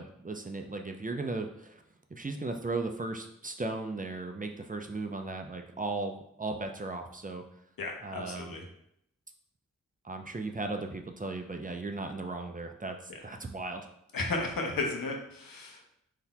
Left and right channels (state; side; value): normal; both; correlation 0.35